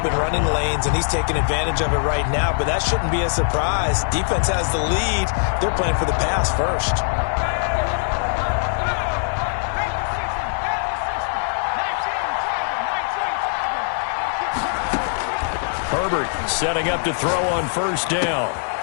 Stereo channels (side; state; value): right; silent; 64 dB below the other